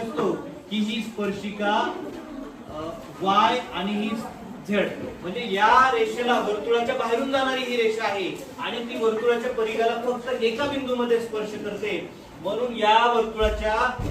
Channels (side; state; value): both; identical; correlation 1.00